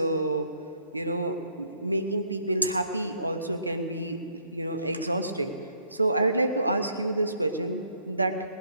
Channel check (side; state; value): both; inverted; correlation -0.65